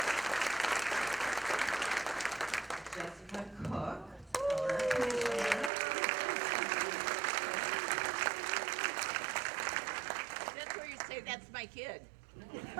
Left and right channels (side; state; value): left; drops out; at 5.7 s